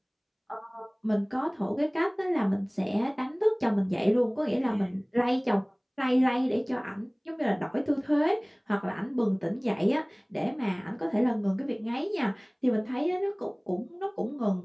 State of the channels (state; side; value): identical; both; correlation 1.00